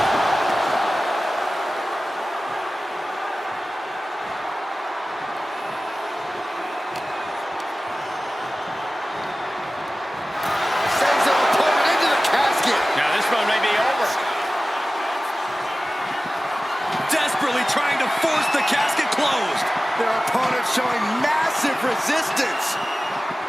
Sends their opponent into the casket. Now this one may be over. Desperately trying to force the casket closed. Their opponent showing massive resistance.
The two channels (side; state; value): both; normal; correlation 0.96